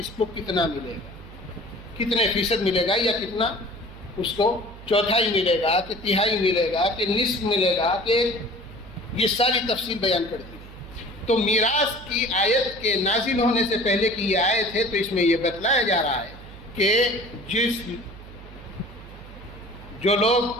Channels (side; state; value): right; noise; hum, 16 dB below the sound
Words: کو کتنا ملے گا، کتنے فیصد ملے گا، یا کتنا اس کو چوتھائی ملے گا کہ تہائی ملے گا کہ نصف ملے گا، کہ یہ ساری تفصیل بیان کر دی۔ تو میراث کی آیت کے نازل ہونے سے پہلے کی یہ آیت ہے، تو اس میں یہ بتلایا جا رہا ہے کہ جو